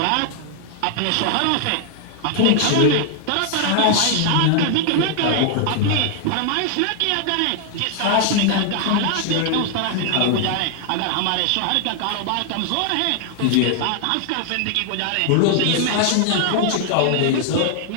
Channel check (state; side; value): different; both; correlation 0.00